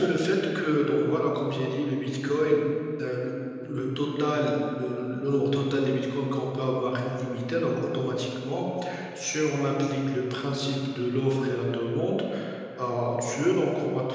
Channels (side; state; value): both; identical; correlation 1.00